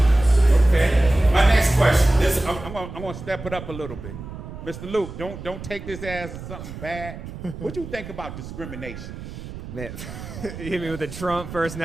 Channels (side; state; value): right; noise; rumble, 11 dB below the sound